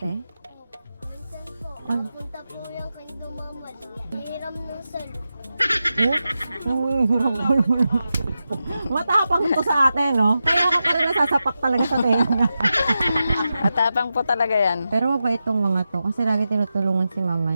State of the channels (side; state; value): both; inverted; correlation -0.91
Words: Minsan po, Ano? punta po yung kay Dumamal. Hiram ng salo. Oh? Nangihiram ko naman. Matapang to sa ate, no? Kaya ka pa rin nasasapak talaga sa tenga. Matapang po talaga yan. Pero mabait tong mga to kasi lagi tinutulungan si mama